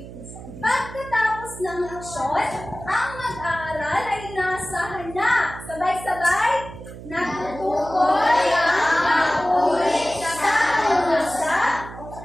Pagkatapos ng leksyon, ang mag-aaral ay inaasahan na sabay-sabay natutukoy ang pang-uri sa pangasa,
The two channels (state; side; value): noise; right; hum, 14 dB below the sound